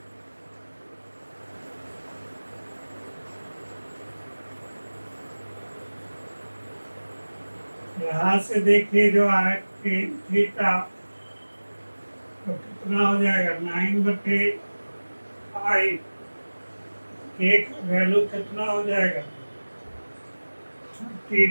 यहाँ से देखिए जो है थीटा तो कितना हो जाएगा, 9/5। के का वैल्यू कितना हो जाएगा,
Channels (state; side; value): inverted; both; correlation -1.00